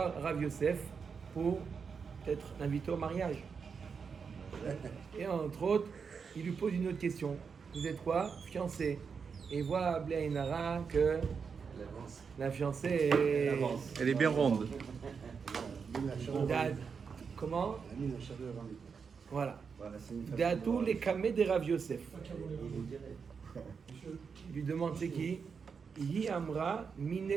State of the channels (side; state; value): left; quieter; 5.9 dB